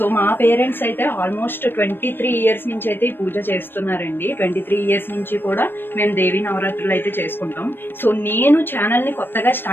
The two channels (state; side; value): late; right; 0.099 ms